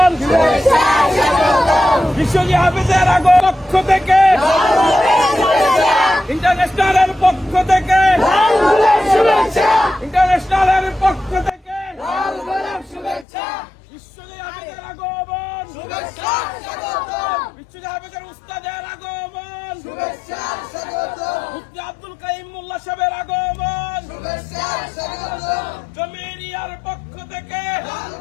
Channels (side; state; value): right; drops out; at 13.2 s